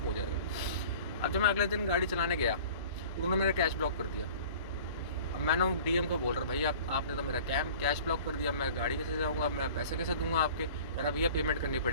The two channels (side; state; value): both; inverted; correlation -0.44